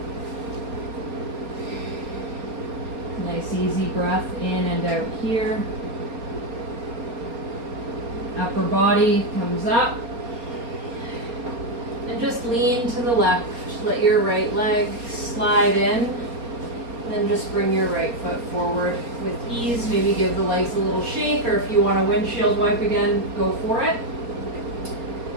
Nice easy breath in and out here. Upper body comes up. And just lean to the left. Let your right leg slide in. Then just bring your right foot forward with ease. Maybe give the legs a little shake, or if you want a windshield wipe again, go for it.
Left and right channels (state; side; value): late; left; 4.3 ms